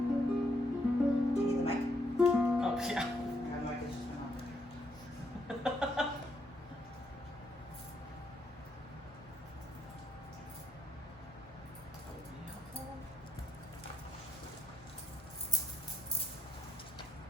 Do you need the mic? Oh, yeah. My mic is just went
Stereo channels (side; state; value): both; normal; correlation 0.75